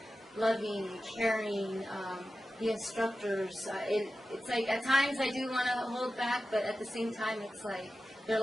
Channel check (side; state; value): both; normal; correlation 0.93